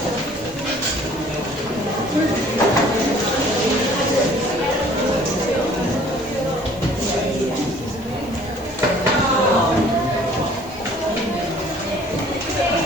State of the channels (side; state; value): left; noise; hiss, 24 dB below the sound